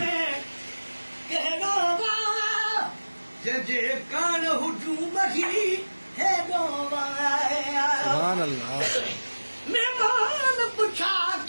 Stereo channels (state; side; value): inverted; both; correlation -1.00